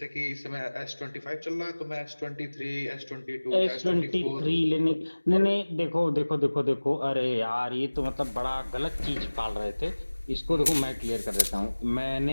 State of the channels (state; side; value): inverted; both; correlation -1.00